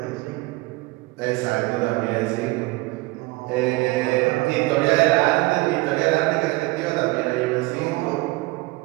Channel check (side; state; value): left; quieter; 22.4 dB